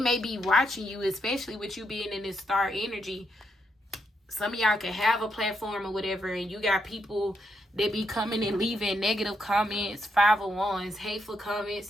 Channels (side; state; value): both; normal; correlation 0.80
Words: be watching you, especially with you being in this star energy. Some of y'all can have a platform or whatever, and you got people that be coming and leaving negative comments, 5 of Wands, hateful comments